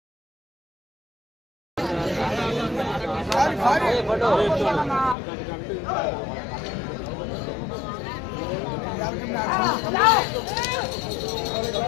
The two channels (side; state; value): right; drops out; at 5.2 s